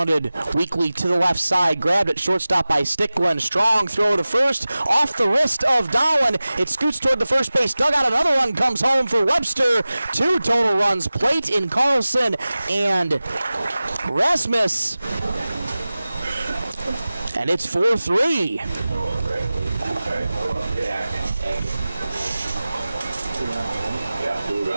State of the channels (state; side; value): inverted; both; correlation -0.97